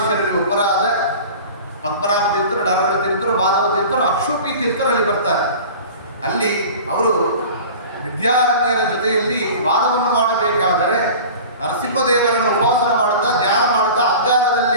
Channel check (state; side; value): inverted; both; correlation -0.39